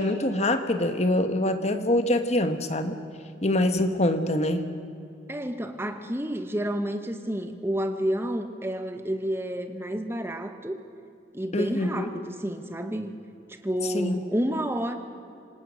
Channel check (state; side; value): normal; both; correlation 0.63